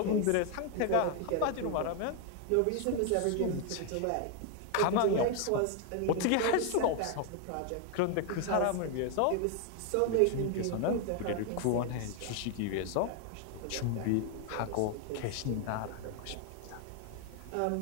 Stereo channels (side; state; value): both; different; correlation 0.01